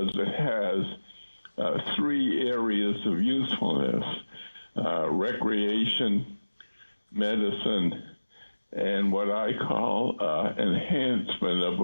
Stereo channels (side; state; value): both; inverted; correlation -1.00